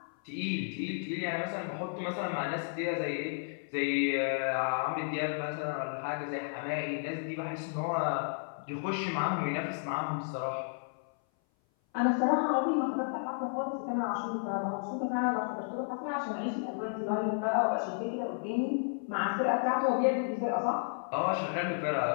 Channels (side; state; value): right; silent; 56 dB below the other